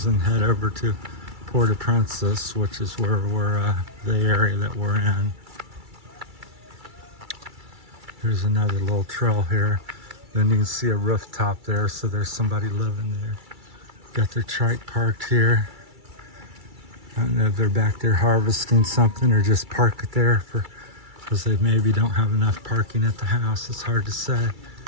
and head over to Port-au-Prince, which is where we're the area that we're in. Here's another little trail here. Then you can see a rooftop there, so there's somebody living there. Got their trike parked here. I don't know if they're back there harvesting something or just park it there because they maybe don't have enough parking at the house. It's hard to say.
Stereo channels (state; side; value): late; left; 2.3 ms